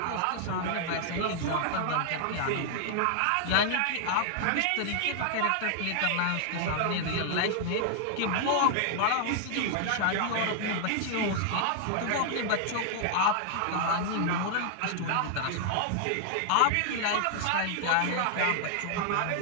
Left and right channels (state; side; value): different; both; correlation 0.00